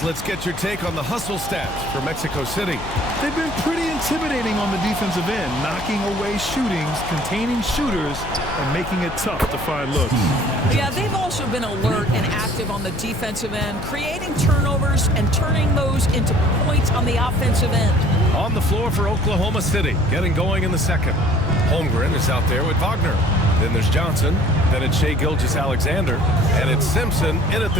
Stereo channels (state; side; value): noise; left; hum, 13 dB below the sound